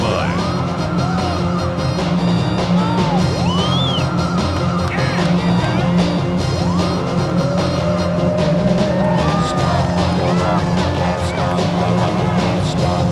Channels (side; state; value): both; identical; correlation 1.00